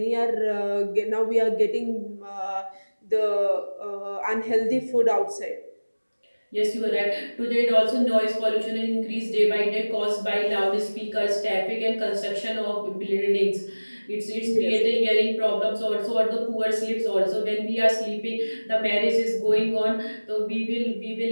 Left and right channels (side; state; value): both; inverted; correlation -1.00